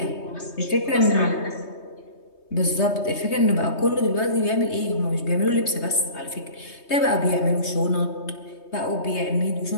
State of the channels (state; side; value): late; right; 3.2 ms